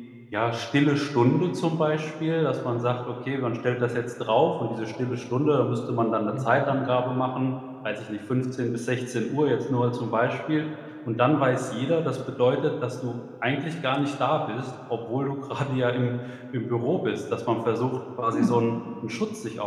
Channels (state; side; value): identical; both; correlation 1.00